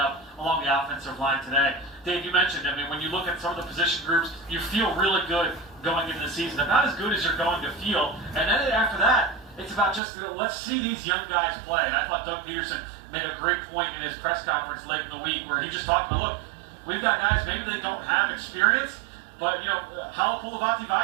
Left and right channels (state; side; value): drops out; left; at 10.0 s